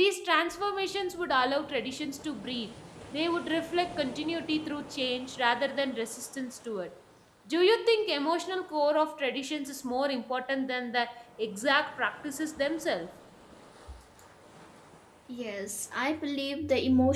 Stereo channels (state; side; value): identical; both; correlation 1.00